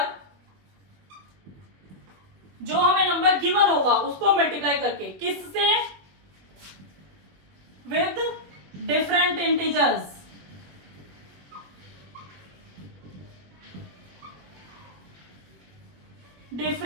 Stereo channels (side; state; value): left; late; 21 ms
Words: जो हमें नंबर गिवन होगा उसको मल्टीप्लाई करके, किससे, with different integers,